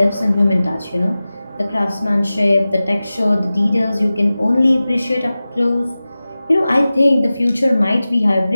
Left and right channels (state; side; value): inverted; both; correlation -0.96